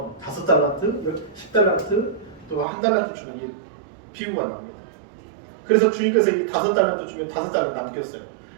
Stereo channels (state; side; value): drops out; left; at 2.7 s